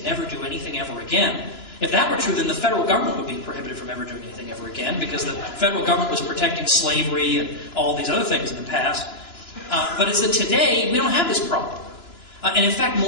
never do anything ever again. If that were true, then the federal government would be prohibited from ever doing anything ever again, because the federal government was protecting slavery and all these other things in the past. But it's that today, we don't have this problem. And in fact,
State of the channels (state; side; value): late; right; 2.9 ms